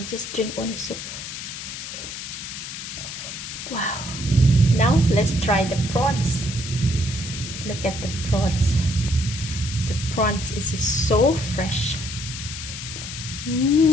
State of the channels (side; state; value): left; noise; hiss, 8 dB below the sound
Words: just drink only soup. Wow. Now let's try the prawns. Look at the prawns. The prawns is so fresh.